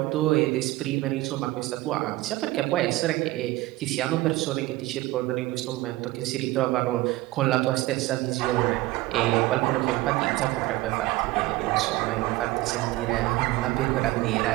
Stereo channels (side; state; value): left; quieter; 18.7 dB